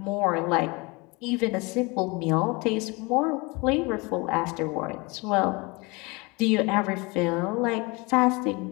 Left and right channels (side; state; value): right; quieter; 26.4 dB